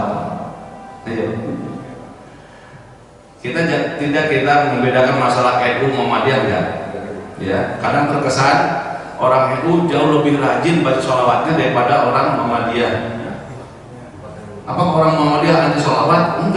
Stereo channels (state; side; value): identical; both; correlation 1.00